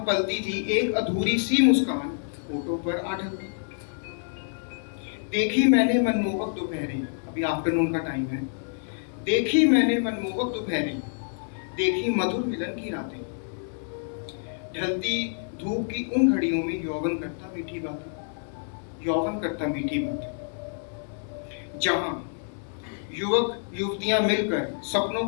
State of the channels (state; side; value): silent; right; digital silence